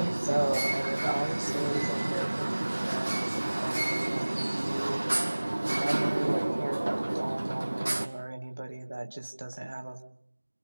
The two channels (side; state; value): both; inverted; correlation -1.00